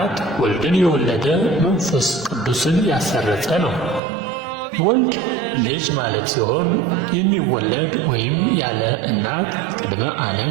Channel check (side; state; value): left; drops out; at 4.0 s